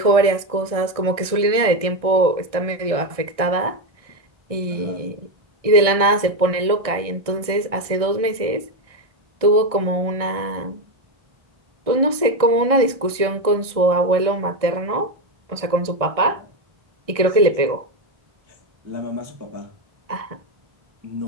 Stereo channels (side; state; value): left; late; 1.6 ms